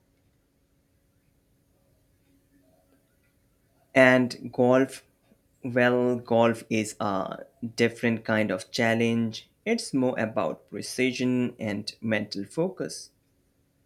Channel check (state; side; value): identical; both; correlation 1.00